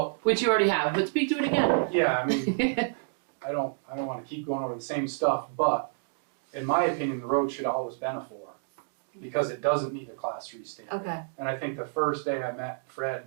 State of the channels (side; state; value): left; silent; digital silence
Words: which you already have, but speak to it again. yeah, I mean, I don't wanna keep going over the same stuff, but in my opinion, the road should have always been a 4. Because it doesn't need a class 3 stamp. Okay. And I think the first day I met Fred,